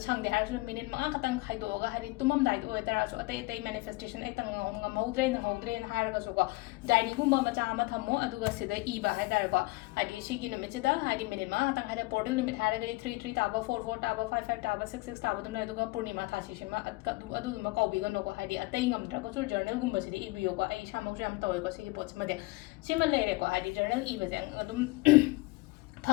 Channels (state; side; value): quieter; right; 22.8 dB